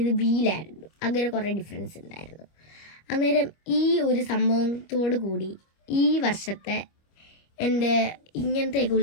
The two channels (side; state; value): right; late; 25 ms